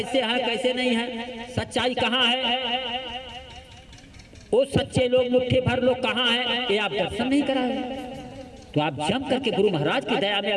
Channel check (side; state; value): both; identical; correlation 1.00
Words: है कैसे नहीं है, सच्चाई कहाँ है, वो सच्चे लोग मुट्ठी भर लोग कहाँ है, ये आप दर्शन नहीं कराए। तो आप जम करके गुरु महाराज की दया में